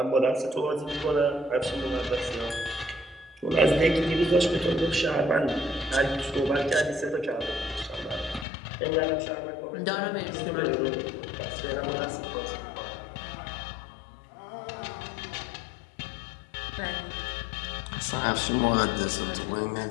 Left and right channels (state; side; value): drops out; right; at 8.5 s